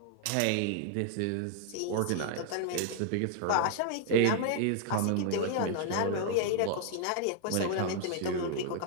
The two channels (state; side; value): different; both; correlation 0.00